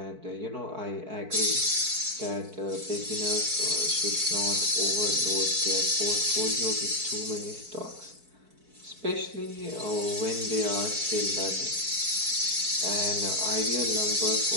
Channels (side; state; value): left; late; 4.6 ms